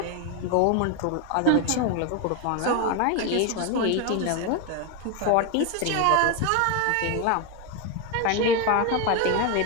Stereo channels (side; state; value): both; different; correlation 0.02